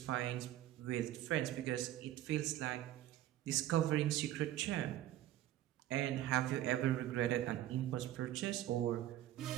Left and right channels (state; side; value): quieter; left; 13.4 dB